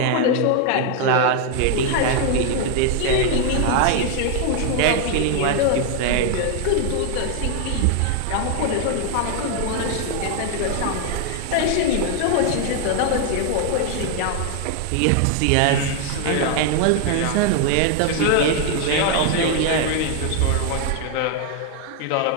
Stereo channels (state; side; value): different; both; correlation 0.00